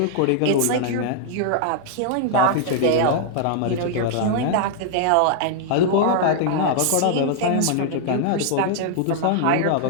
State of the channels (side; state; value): both; different; correlation -0.01